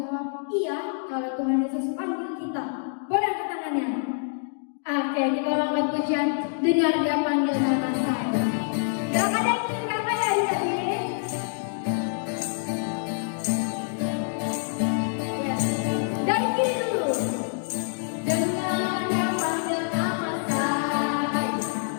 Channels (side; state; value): right; silent; digital silence